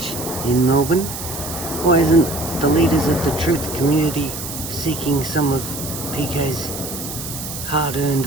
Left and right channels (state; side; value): noise; right; hiss, 8 dB below the sound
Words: in Melbourne. Why isn't the leaders of the truth community seeking some of PK's hard-earned